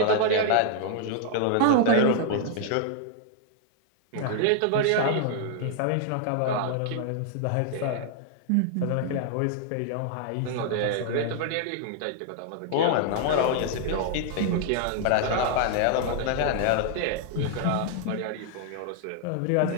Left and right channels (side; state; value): both; different; correlation 0.00